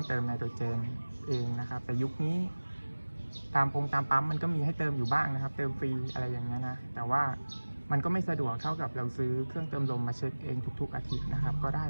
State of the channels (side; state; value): both; inverted; correlation -1.00